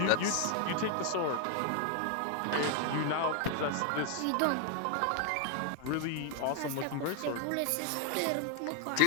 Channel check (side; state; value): both; different; correlation 0.00